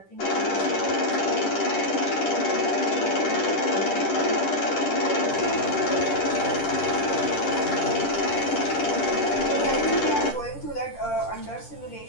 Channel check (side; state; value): right; late; 10 ms